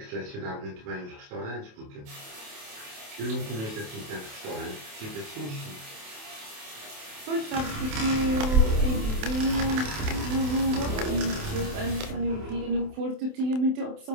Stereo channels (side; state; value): left; late; 27 ms